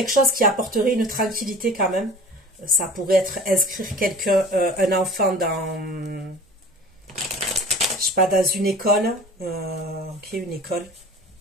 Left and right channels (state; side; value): normal; both; correlation 0.41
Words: chose qui apporterait une tranquillité quand même. Ça pourrait être inscrire quelqu'un, un enfant dans, je sais pas, dans une école. Ok, une école.